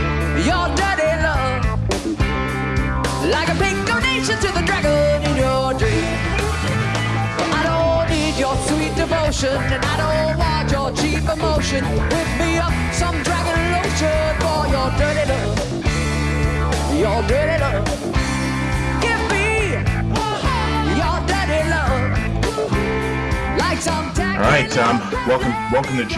your dirty love, like a pink donation to the dragon in your dream. I don't need your sweet devotion, and I don't want your cheap emotion. Whip me up some dragon lotion for your dirty love, your dirty love. Give me your dirty love, like some All right, welcome to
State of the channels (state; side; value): identical; both; correlation 1.00